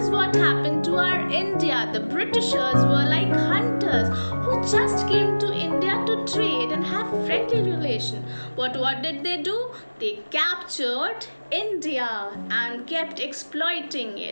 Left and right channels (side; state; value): both; inverted; correlation -1.00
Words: what happened to our India. The Britishers were like hunters who just came to India to trade and have friendly relation. What did they do? They captured India and kept exploiting